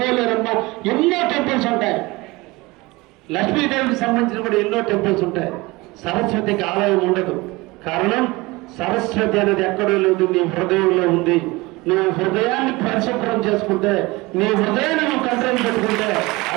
ఎన్నో టెంపుల్స్ ఉంటాయి. లక్ష్మీదేవికి సంబంధించిన కూడా ఎన్నో టెంపుల్స్ ఉంటాయి. సరస్వతికి ఆలయం ఉండదు. కారణం సరస్వతి అనేది ఎక్కడో లేదు, నీ హృదయంలో ఉంది. నువ్వు హృదయాన్ని పరిశుభ్రం చేసుకుంటే, నీ హృదయాన్ని నువ్వు కంట్రోల్ పెట్టుకుంటే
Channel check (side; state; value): left; quieter; 22.5 dB